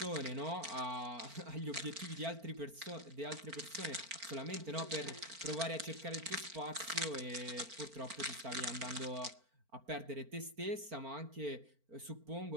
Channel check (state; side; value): late; left; 4.4 ms